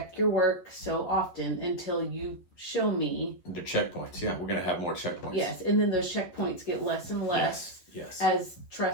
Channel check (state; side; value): late; right; 11 ms